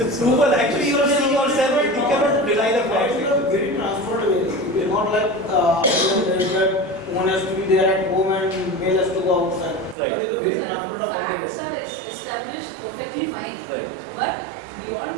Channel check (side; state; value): left; drops out; at 10.0 s